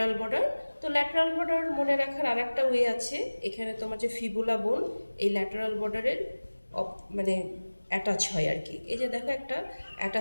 বর্ডার। তো ল্যাটারাল বর্ডার মনে রাখার আরেকটা ওয়ে আছে, এখানে তোমার যে ফিবুলা বোন এই ল্যাটারাল বর্ডারের মানে অ্যাটাচ হয় আর কি। এই যে দেখো একটা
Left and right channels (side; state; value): both; inverted; correlation -1.00